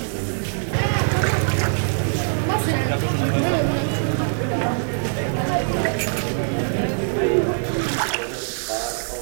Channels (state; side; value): silent; left; digital silence